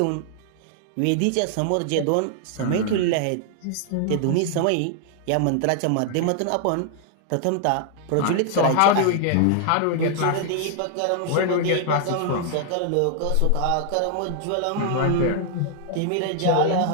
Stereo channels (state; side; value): different; both; correlation 0.00